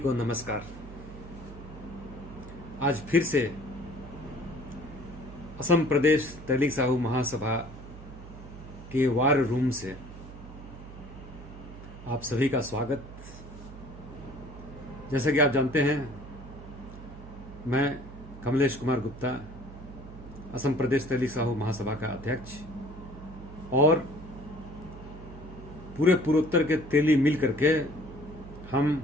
नमस्कार। आज फिर से असम प्रदेश तैलीग साहू महासभा के वार रूम से आप सभी का स्वागत। जैसा कि आप जानते हैं, मैं कमलेश कुमार गुप्ता, असम प्रदेश तैलीग साहू महासभा का अध्यक्ष, और पूरे पूर्वोत्तर के तेली मिल करके हम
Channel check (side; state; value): right; noise; hum, 14 dB below the sound